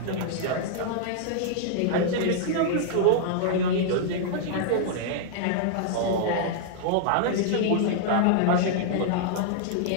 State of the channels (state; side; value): different; both; correlation -0.01